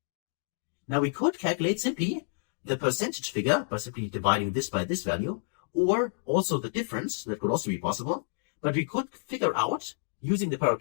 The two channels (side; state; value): right; silent; digital silence